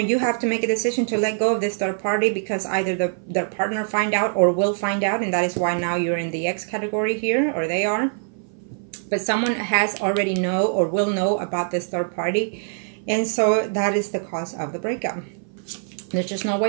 you have to make a decision to let go of this third party, because either their partner find out or will find out, and that is why now you're in the X category here, or they are. But someone has already know or will know about this third party, and so that is the cause of the breakup. There's just no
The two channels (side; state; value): left; silent; 57 dB below the other